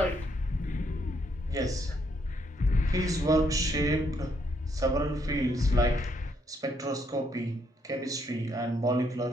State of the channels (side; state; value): both; normal; correlation 0.73